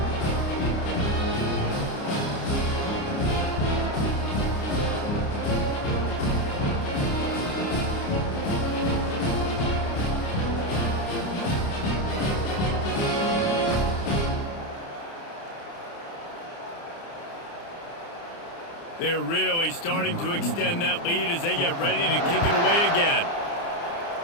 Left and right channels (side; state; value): right; late; 29 ms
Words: They're really starting to extend that lead as they get ready to kick it away again.